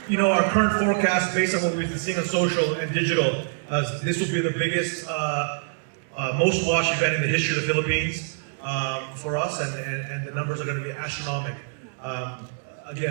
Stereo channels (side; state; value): left; silent; digital silence